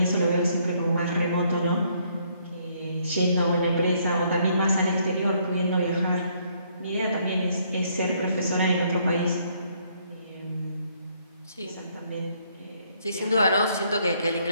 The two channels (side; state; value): both; inverted; correlation -0.68